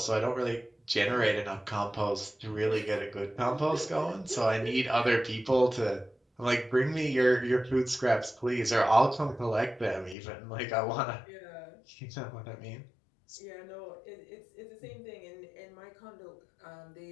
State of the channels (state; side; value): drops out; right; at 10.2 s